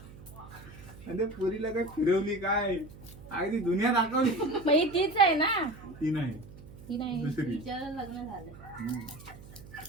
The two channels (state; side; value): noise; right; hum, 18 dB below the sound